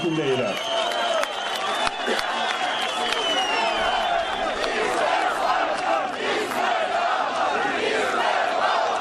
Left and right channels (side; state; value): both; identical; correlation 1.00